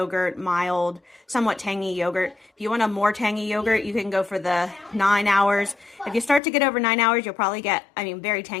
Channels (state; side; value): drops out; right; at 6.4 s